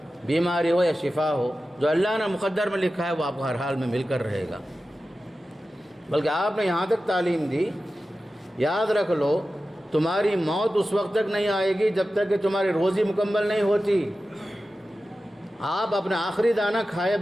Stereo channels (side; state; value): both; normal; correlation 0.94